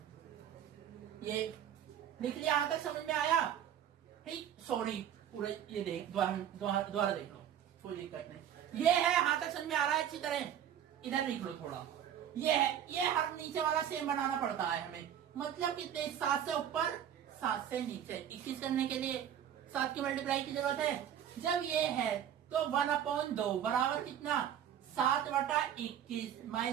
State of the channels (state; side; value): quieter; left; 9.8 dB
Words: ये लिख लिया। यहाँ तक समझ में आया, ठीक। सॉरी पूरे ये देख, दोबारा देख लो, कोई दिक्कत नहीं। ये है, यहाँ तक समझ में आ रहा है अच्छी तरह, इधर लिख लो थोड़ा। ये है, ये हर नीचे वाला सेम बनाना पड़ता है हमें, मतलब कितने, 7 से ऊपर 7 से नीचे। 21 करने के लिए 7 की मल्टीप्लाई की जरूरत है। जब ये है तो 1/2 बराबर कितना, 7/21